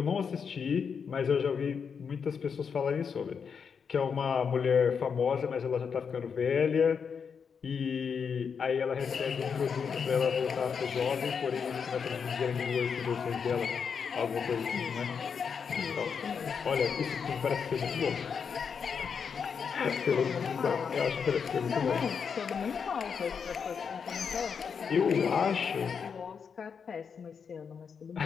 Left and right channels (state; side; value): quieter; right; 6.4 dB